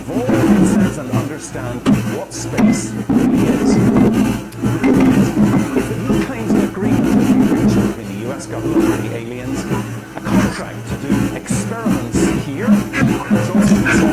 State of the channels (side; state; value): both; identical; correlation 1.00